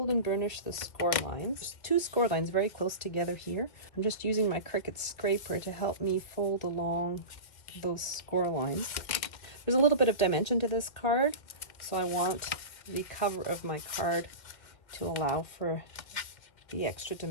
and burnish the score lines. There's two score lines very close together here. I'm just using my Cricut scraper to help me fold along those score lines. There's a little bit of dimension to this card, so I want the cover of my card to allow for the extra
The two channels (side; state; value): right; late; 1.9 ms